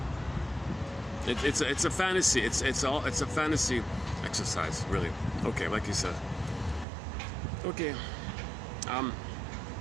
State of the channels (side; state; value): left; drops out; at 6.9 s